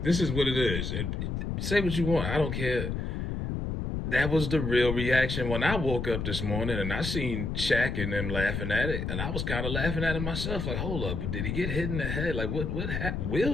this is what it is. Say what you want. I don't care. That was the real reaction when I woke up this morning and I seen Shaq and them laughing at it, and I was kind of laughing at it myself. Like, hold up, but did he get hit in the head? Like, what happened?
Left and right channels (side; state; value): left; noise; rumble, 2 dB below the sound